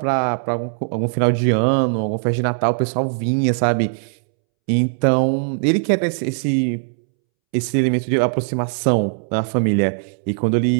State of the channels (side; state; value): left; silent; 66 dB below the other